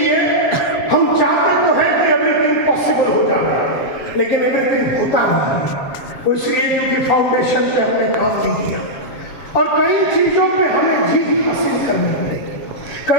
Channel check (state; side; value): late; right; 7.4 ms